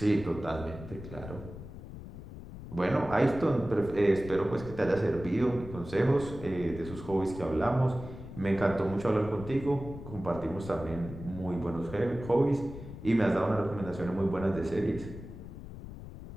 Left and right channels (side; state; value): left; noise; rumble, 12 dB below the sound